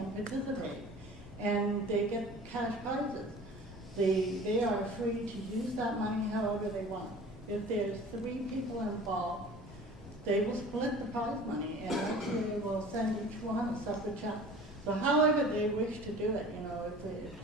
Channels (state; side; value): normal; both; correlation 0.43